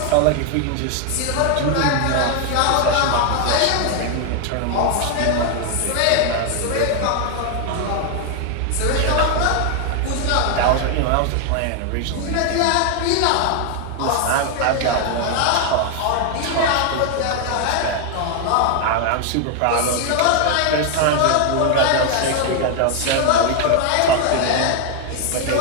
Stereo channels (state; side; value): different; both; correlation 0.00